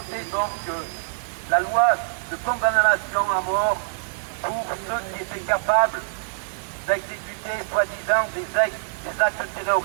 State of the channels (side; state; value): left; silent; digital silence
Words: donc la loi de condamnation à mort pour ceux qui étaient capables d'exécuter soi-disant des actes